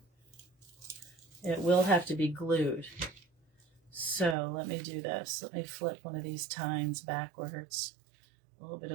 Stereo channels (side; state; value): left; drops out; at 4.4 s